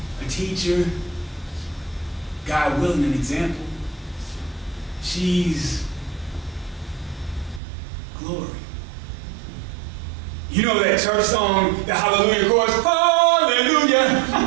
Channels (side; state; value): left; drops out; at 7.6 s